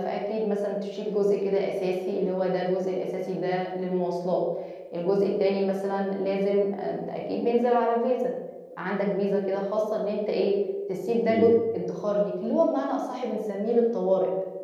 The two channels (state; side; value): identical; both; correlation 1.00